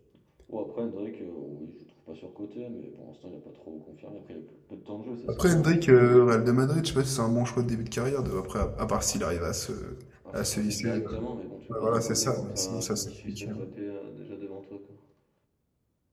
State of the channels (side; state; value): both; identical; correlation 1.00